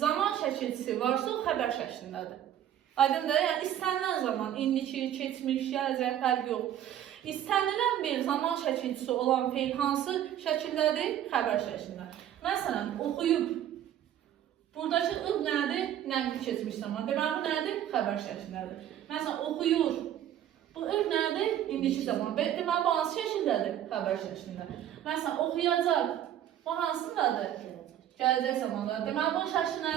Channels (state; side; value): quieter; left; 11.1 dB